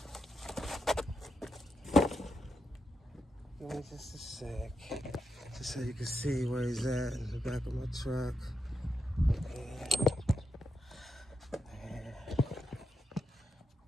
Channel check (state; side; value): normal; both; correlation 0.84